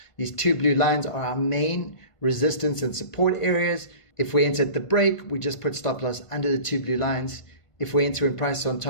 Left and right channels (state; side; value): late; right; 1.5 ms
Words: These 2 blue lines are our main resistance and support areas. If we enter at the break, we just put stop loss under the 2 blue lines. If we enter in price on